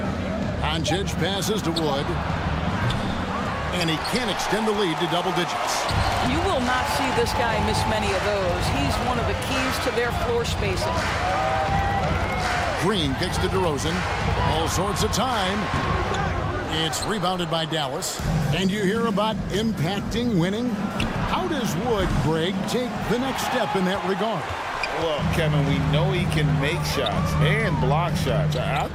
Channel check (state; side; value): identical; both; correlation 1.00